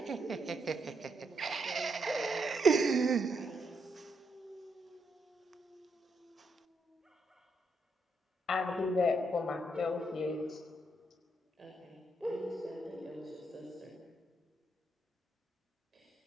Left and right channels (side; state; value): both; normal; correlation 0.78